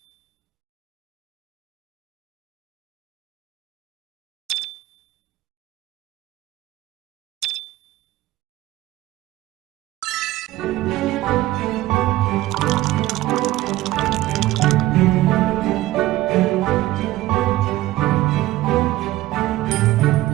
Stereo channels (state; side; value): quieter; left; 16.5 dB